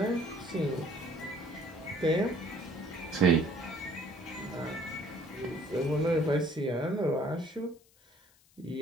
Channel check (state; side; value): noise; left; hiss, 30 dB below the sound